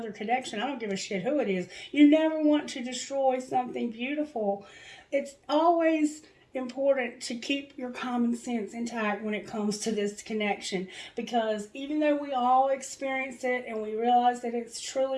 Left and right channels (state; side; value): identical; both; correlation 1.00